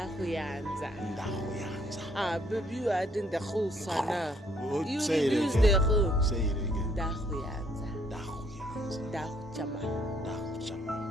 Ndahuyanza. Baby, you are doing the whole sana. You say reduce it the again. whole. Say it again. Ndahuyanza. Ndahuyanza. Ndahuchama.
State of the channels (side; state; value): both; normal; correlation 0.66